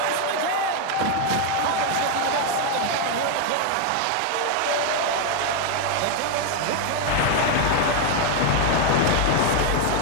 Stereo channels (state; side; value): different; both; correlation 0.01